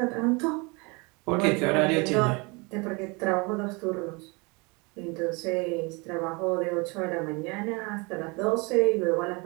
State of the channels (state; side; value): quieter; left; 28.5 dB